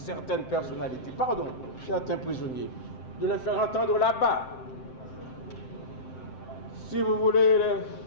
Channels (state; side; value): late; right; 7.7 ms